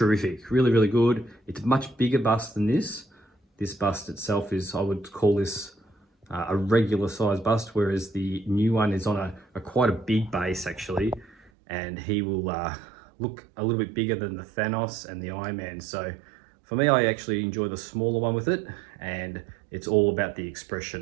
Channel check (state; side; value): drops out; left; at 11.5 s